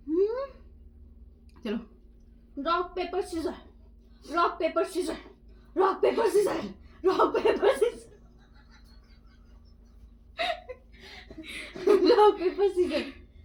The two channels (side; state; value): both; identical; correlation 1.00